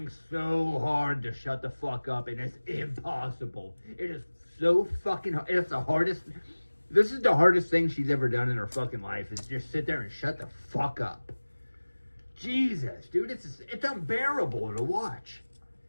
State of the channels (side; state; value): both; inverted; correlation -1.00